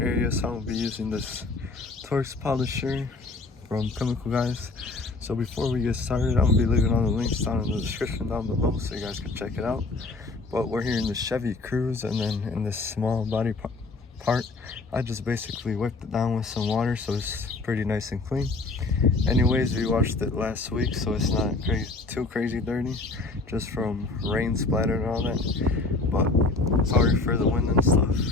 So I'm going to be using this Torx polisher from Chemical, guys. So before we get started, I'm going to be leaving all the links down in the description down below so you guys can check it out. But we're here in the Chevy Cruze, and then in this small body part, I just basically whipped it down with some water so it's pretty nice and clean. Anyways, we washed it last week, so it's not too crazy dirty, just from rain splatter and all that. But sorry for the wind and stuff,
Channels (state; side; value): quieter; right; 3.5 dB